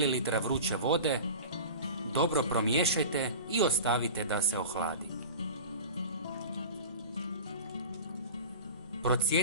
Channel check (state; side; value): inverted; both; correlation -0.34